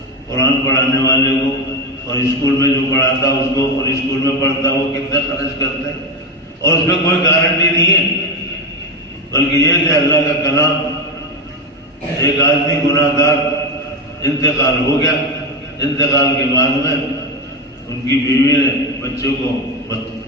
قرآن پڑھانے والے کو، اور اسکول میں جو پڑھاتا اس کو، اور اسکول میں پڑھتا وہ کتنا خرچ کرتے ہیں، اور اس میں کوئی گارنٹی نہیں ہے. بلکہ یہ کہ اللہ کا کلام، ایک آدمی گناہ گار انتقال ہو گیا، انتقال کے بعد میں ان کی بیوی نے بچوں کو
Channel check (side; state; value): both; normal; correlation 0.14